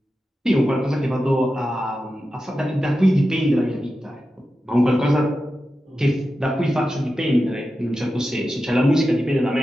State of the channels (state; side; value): normal; both; correlation 0.91